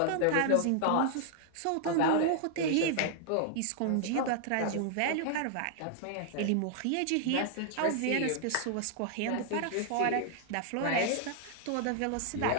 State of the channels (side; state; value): both; different; correlation 0.00